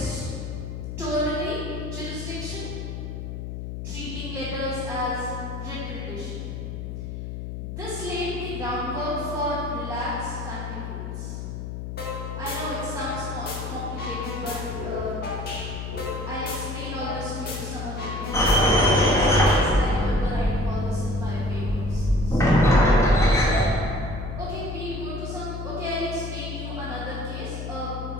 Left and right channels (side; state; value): left; noise; hum, 6 dB below the sound